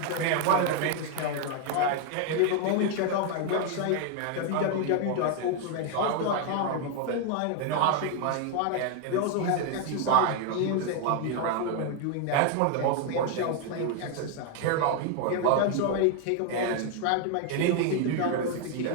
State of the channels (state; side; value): different; both; correlation 0.01